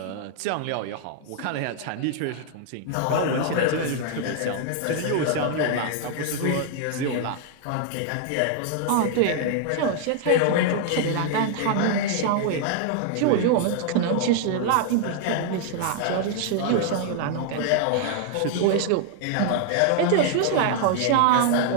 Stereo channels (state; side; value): different; both; correlation 0.00